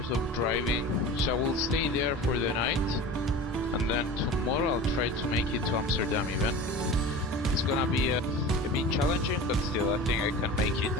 of driving. So I will stay there for the night, and then tomorrow I'll try to make it to Amsterdam even. It's gonna be a bit challenging, but still I think I can make it.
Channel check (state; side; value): normal; both; correlation 0.35